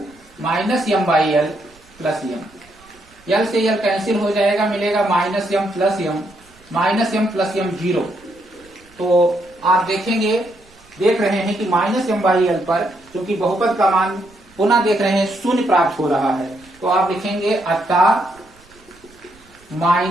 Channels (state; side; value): noise; right; rumble, 29 dB below the sound